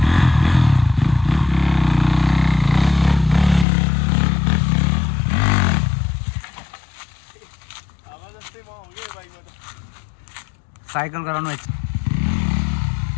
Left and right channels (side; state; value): right; drops out; at 3.7 s